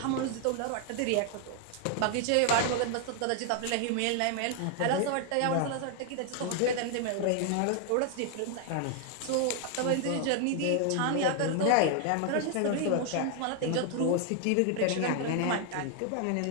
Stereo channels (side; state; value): both; different; correlation 0.00